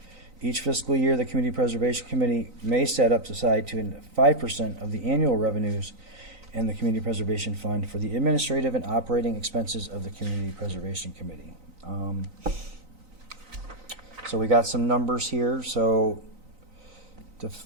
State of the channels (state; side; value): late; left; 3.9 ms